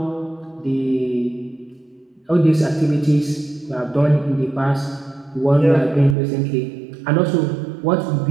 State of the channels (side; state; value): left; drops out; at 6.2 s